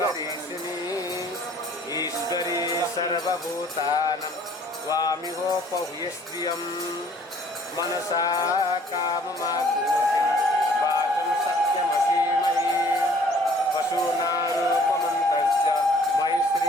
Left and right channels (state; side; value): normal; both; correlation 0.56